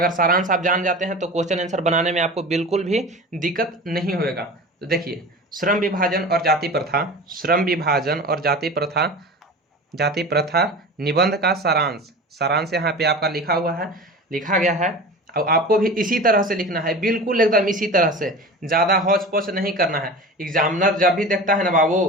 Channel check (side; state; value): both; normal; correlation 0.34